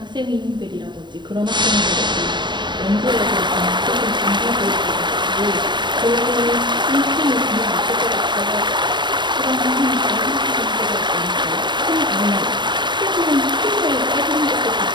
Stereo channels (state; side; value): late; left; 0.22 ms